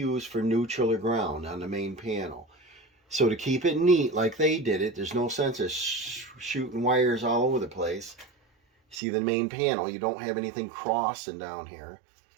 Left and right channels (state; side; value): drops out; left; at 9.0 s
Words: for neutral or ground on the main panel. So to keep it neat like they did it, there's no sense of shooting wires all over the place. See the main panel, you don't have anything crossing down here